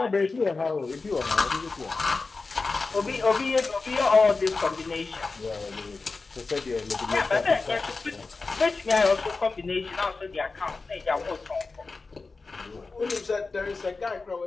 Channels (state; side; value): quieter; right; 4.0 dB